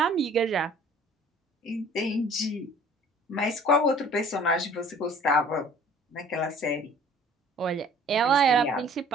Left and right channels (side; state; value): both; normal; correlation 0.51